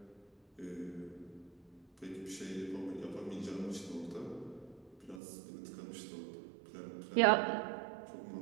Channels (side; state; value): left; drops out; at 5.2 s